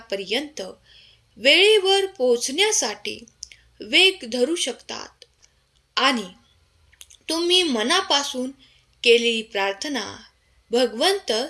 वेळेवर पोहोचण्यासाठी वेग धरू शकतात आणि तुम्ही मनापासून केलेली प्रार्थना भगवंत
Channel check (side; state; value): both; identical; correlation 1.00